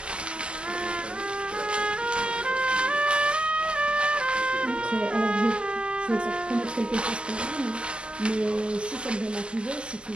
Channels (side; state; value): left; late; 0.057 ms